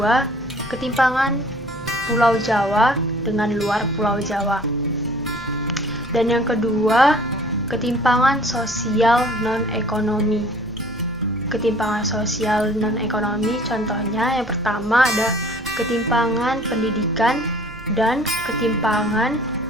ketimpangan Pulau Jawa dengan luar Pulau Jawa. Dan yang kedua, ketimpangan sosial non-ekonomi. Ketimpangan sosial non-ekonomi contohnya yang pertama ada ketimpangan pendidikan dan ketimpangan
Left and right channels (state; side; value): noise; right; hum, 19 dB below the sound